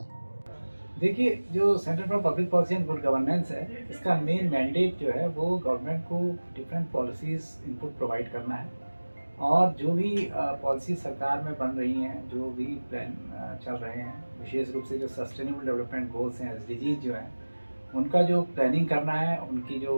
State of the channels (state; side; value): inverted; both; correlation -1.00